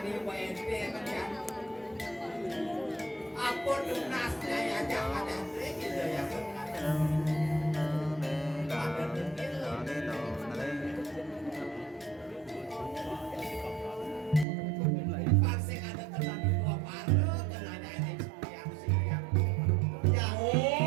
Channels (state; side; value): drops out; left; at 14.5 s